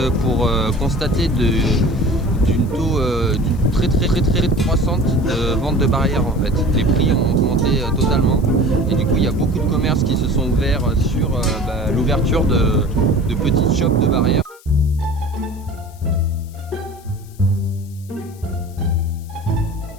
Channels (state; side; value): noise; left; hiss, 25 dB below the sound